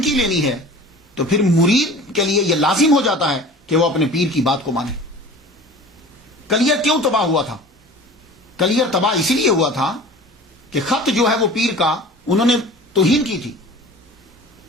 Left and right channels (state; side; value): normal; both; correlation 0.41